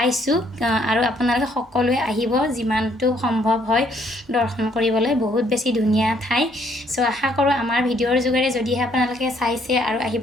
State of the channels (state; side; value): normal; both; correlation 0.67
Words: আৰু আপোনালোকে সকলোৱে আহিব যিমানটো সম্ভৱ হয় দৰ্শন কৰিবলৈ বহুত বেছি ধুনীয়া ঠাই সো আশা কৰো আমাৰ ভিডিঅ'ৰ যোগেৰে যদিহে আপোনালোকে চাইছে আৰু